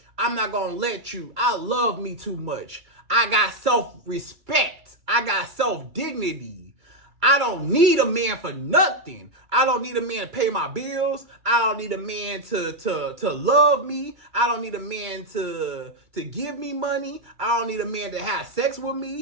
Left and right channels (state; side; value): late; left; 2.3 ms